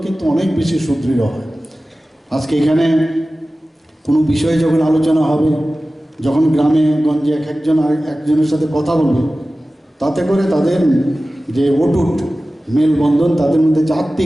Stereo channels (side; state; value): both; normal; correlation 0.96